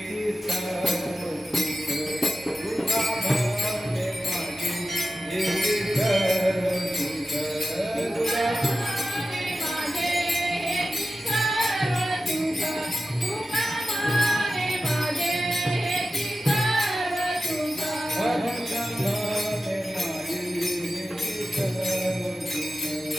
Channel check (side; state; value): both; normal; correlation 0.93